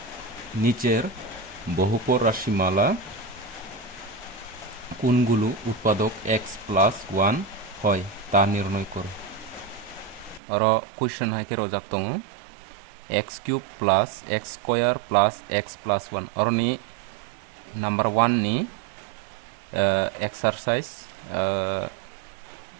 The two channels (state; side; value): drops out; left; at 10.4 s